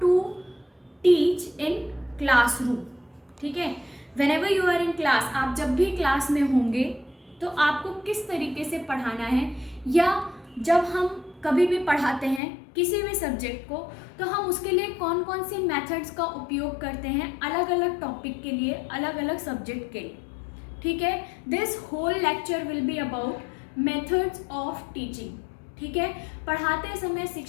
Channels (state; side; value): drops out; right; at 12.4 s